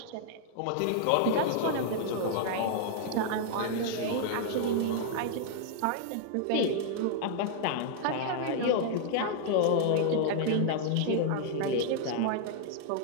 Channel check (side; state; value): both; different; correlation 0.00